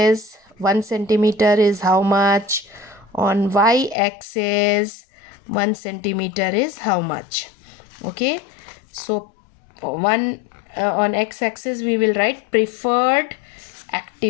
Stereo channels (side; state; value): right; drops out; at 4.0 s